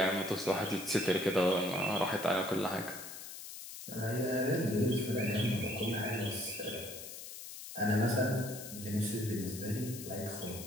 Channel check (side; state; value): left; noise; hiss, 11 dB below the sound